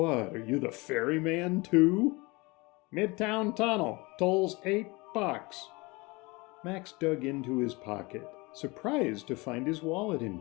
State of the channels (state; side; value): quieter; right; 25.0 dB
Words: are you the ferryman too?" "Midtown Tunnel, tolls $8. Max dug into his pocket, surprised to find his wallet